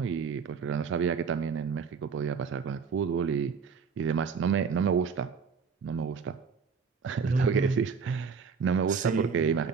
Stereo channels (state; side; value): quieter; left; 5.8 dB